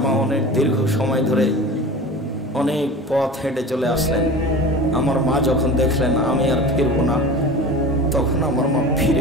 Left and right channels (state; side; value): normal; both; correlation 0.34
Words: মা অনেক দীর্ঘ সময় ধরে অনেক পথ হেঁটে চলে আসলেন। আমার মা যখন দেখলেন আমি আর ফিরবো না, তখন আমার মা